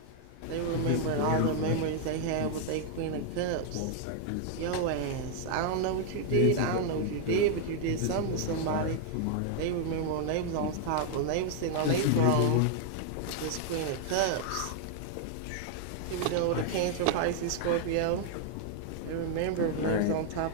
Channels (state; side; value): different; both; correlation 0.00